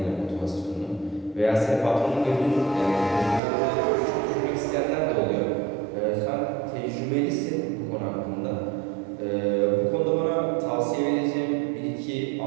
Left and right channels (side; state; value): left; drops out; at 3.4 s